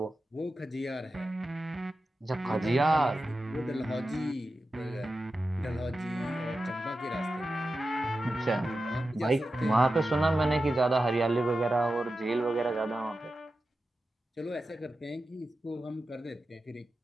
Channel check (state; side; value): normal; both; correlation 0.92